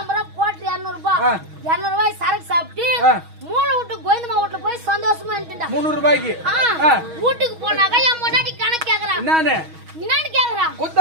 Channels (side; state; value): left; late; 6.3 ms